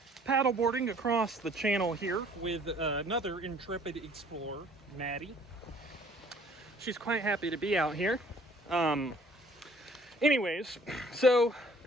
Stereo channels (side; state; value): both; normal; correlation 0.56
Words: paddleboarding across the channel here with another intrepid explorer, Maddie. She's quite happy to be out here. Anyways, so